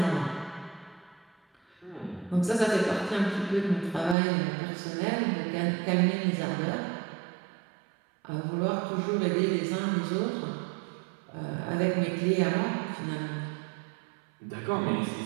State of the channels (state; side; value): drops out; left; at 4.2 s